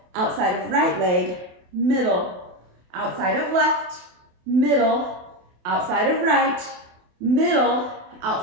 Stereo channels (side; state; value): left; late; 28 ms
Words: outside of right leg, middle, outside of left, middle, outside of right, middle,